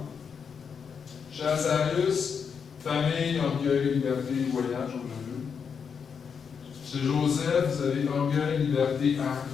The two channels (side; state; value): right; quieter; 6.5 dB